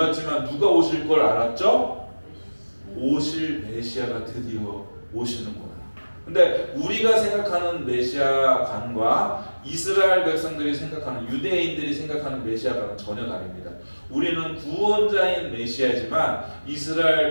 누가 오실 걸 알았죠? 오실 메시아가 드디어 오시는구나. 근데 우리가 생각하는 메시아관과 이스라엘 백성들이 생각하는, 유대인들이 생각하는 메시아관은 전혀 다릅니다. 우리는 구원자인 메시아지만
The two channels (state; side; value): inverted; both; correlation -1.00